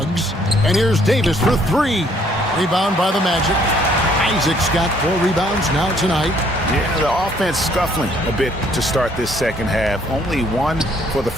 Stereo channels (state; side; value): normal; both; correlation 0.64